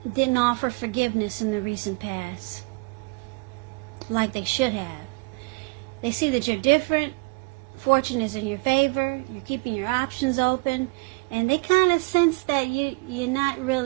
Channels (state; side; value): quieter; left; 30.4 dB